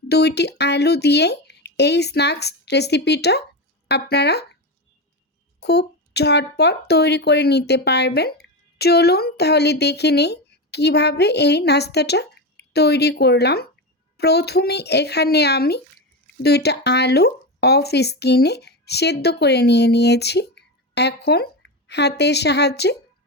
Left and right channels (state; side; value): normal; both; correlation 0.17